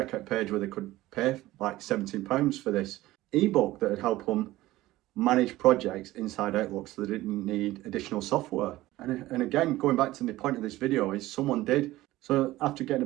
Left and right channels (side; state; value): left; quieter; 17.0 dB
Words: page where they could pay like £17 for this ebook that would help them manage projects inside Outlook, so they didn't need additional software. And again, going back to the point of this video, is someone did. So after getting